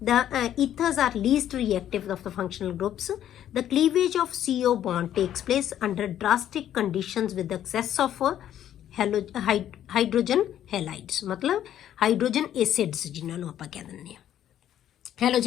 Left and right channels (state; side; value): quieter; right; 11.1 dB